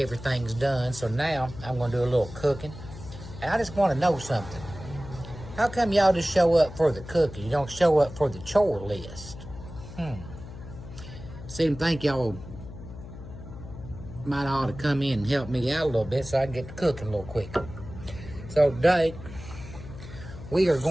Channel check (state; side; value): noise; left; hum, 13 dB below the sound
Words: done, so now I'm going to do a little cooking. And I just want to know something. How come y'all just show up for the cooking? You don't show up for the chore list? Seem to think y'all might ought to come in and help me out a little bit so I can get to cooking a little quicker. So today, we are